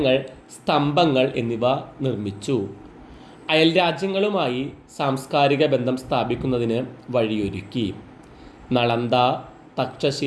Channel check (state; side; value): identical; both; correlation 1.00